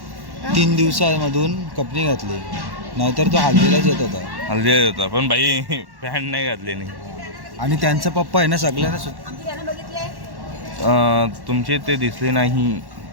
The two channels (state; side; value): late; left; 1.1 ms